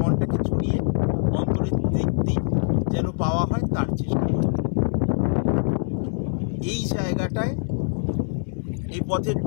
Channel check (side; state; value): right; silent; 62 dB below the other